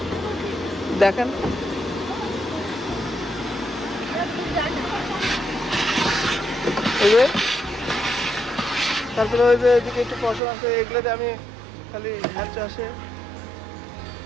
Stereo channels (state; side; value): drops out; left; at 10.4 s